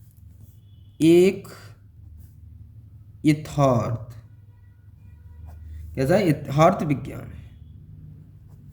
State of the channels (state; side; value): identical; both; correlation 1.00